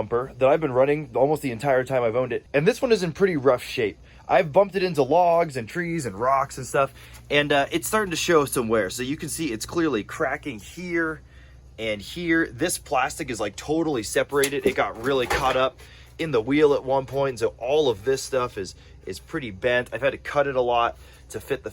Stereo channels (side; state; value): both; identical; correlation 1.00